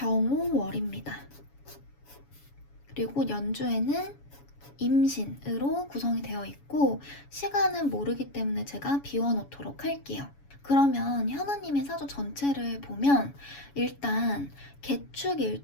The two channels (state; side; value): late; right; 7.1 ms